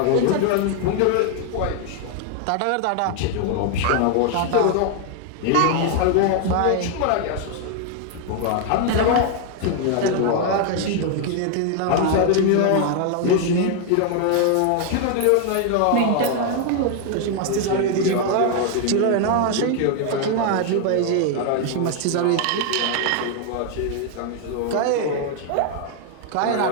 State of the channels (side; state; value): both; different; correlation 0.00